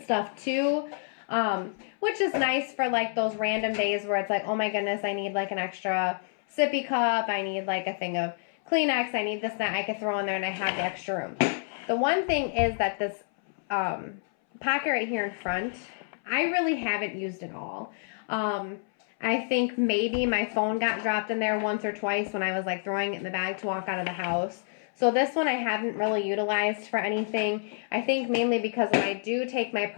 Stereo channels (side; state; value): right; silent; 59 dB below the other